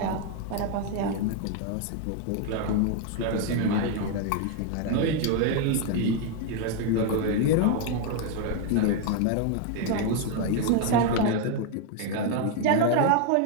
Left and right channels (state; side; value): different; both; correlation 0.01